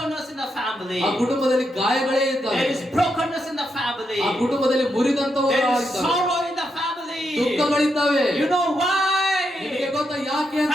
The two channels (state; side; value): normal; both; correlation 0.82